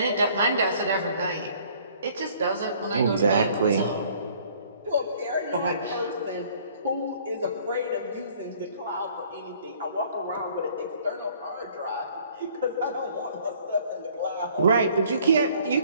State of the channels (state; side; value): inverted; both; correlation -0.57